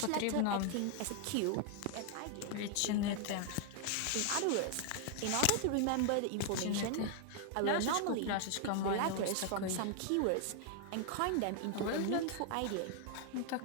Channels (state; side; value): different; both; correlation 0.00